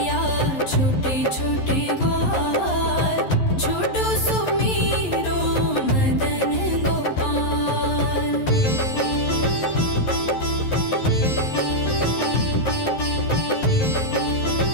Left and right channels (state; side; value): late; right; 11 ms